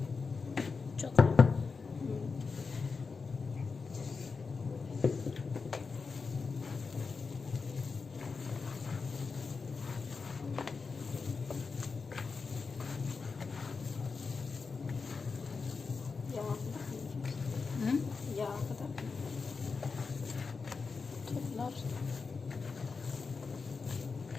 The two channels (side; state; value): right; quieter; 4.8 dB